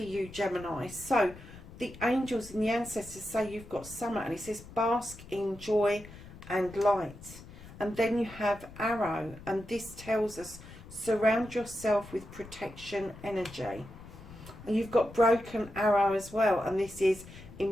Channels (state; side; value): noise; left; rumble, 17 dB below the sound